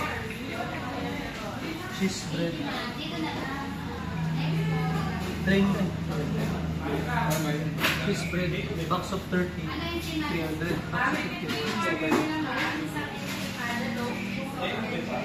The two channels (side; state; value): both; identical; correlation 1.00